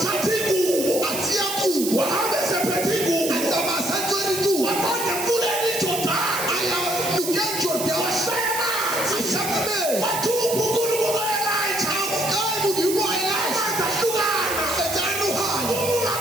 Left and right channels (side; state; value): right; noise; hiss, 5 dB below the sound